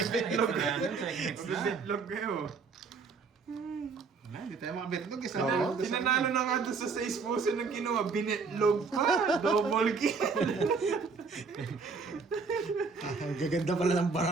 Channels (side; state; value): left; quieter; 4.9 dB